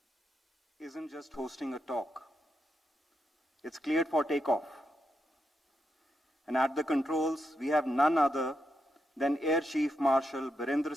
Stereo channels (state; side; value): normal; both; correlation 0.84